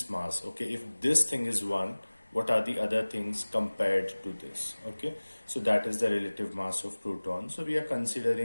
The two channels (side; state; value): both; inverted; correlation -1.00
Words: mass. Okay, if this thing is 1, what are the other things compared to this? Okay, so that is the relative mass of proton. So we are